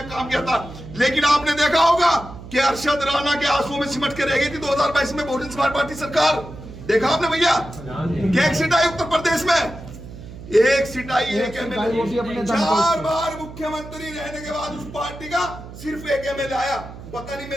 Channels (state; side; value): noise; right; hum, 14 dB below the sound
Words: काम किया था। लेकिन आपने देखा होगा कि अरशद राणा के आंसुओं में सिमट के रह गई थी 2022 में बहुजन समाज पार्टी सरकार। देखा आपने भैया, एक सीट आई उत्तर प्रदेश में, एक सीट आई, एक एमएलए। 4 बार मुख्यमंत्री रहने के बाद उस पार्टी का सिर्फ एक एमएलए आया। पता नहीं